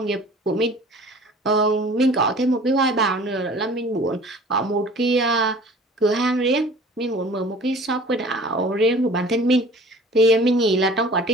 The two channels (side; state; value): both; normal; correlation 0.46